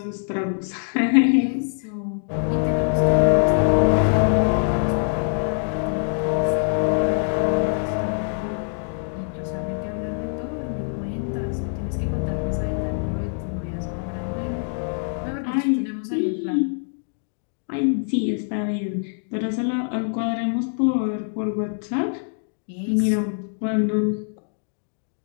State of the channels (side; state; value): right; silent; digital silence